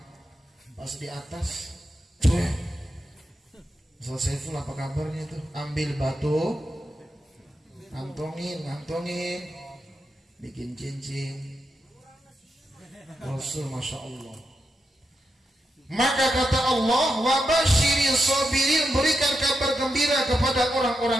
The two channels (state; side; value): normal; both; correlation 0.86